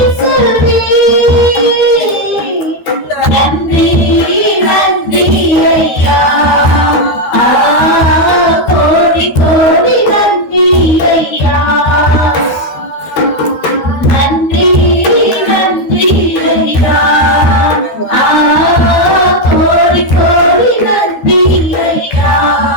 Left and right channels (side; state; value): right; late; 13 ms